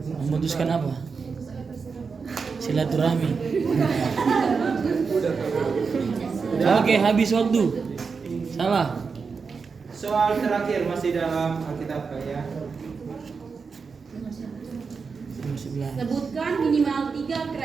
Memutuskan apa? Silaturahmi. Oke, habis waktu. Salah. Soal terakhir masih dalam Alkitab ya. Sebutkan minimal 3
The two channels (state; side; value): quieter; left; 5.2 dB